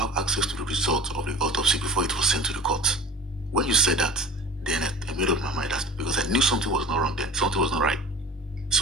access to the result of the autopsy before it was sent to the court. When you said that, then I made up my mind because I knew something was not wrong then, something was not right.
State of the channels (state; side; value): normal; both; correlation 0.38